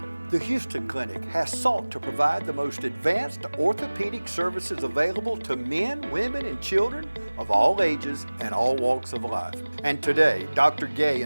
the Houston Clinic has sought to provide the most advanced orthopedic services available to men, women, and children of all ages and all walks of life. And today, Dr. Gay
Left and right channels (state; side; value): inverted; both; correlation -1.00